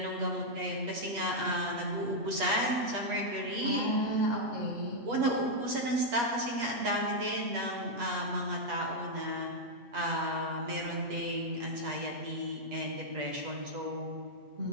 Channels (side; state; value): left; late; 8.3 ms